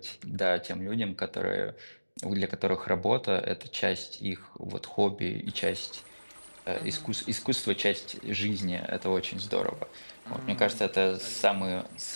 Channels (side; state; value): both; inverted; correlation -1.00